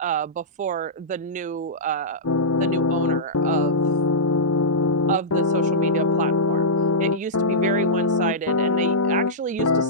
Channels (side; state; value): both; normal; correlation -0.12